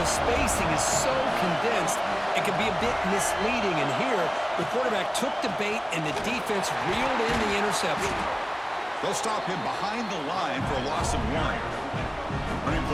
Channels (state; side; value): identical; both; correlation 1.00